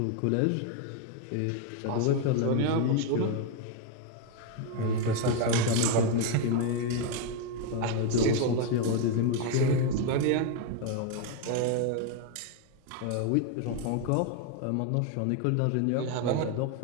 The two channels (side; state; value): both; different; correlation 0.01